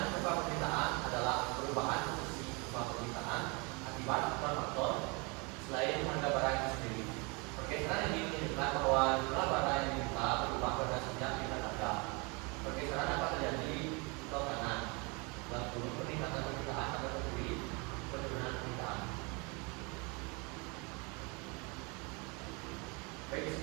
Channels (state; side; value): quieter; left; 29.9 dB